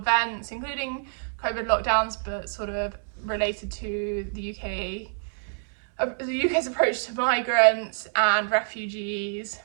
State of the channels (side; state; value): left; silent; digital silence